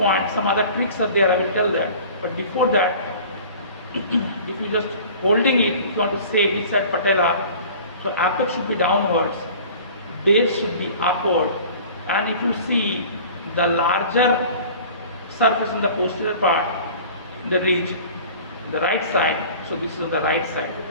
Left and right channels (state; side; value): inverted; both; correlation -0.43